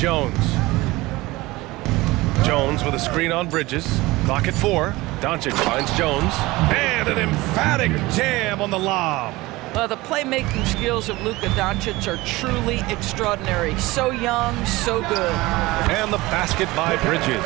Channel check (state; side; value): quieter; left; 20.3 dB